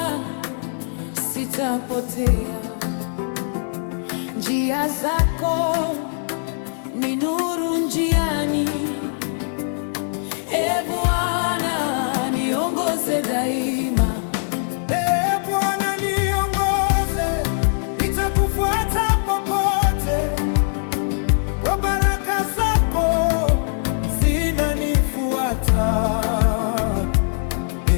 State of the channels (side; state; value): right; silent; digital silence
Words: sitapotea. Njia zako ni nuru njiani, Bwana niongoze daima. Bwana niongoze, nitakufuata popote. Kwa baraka zako zinanifuata,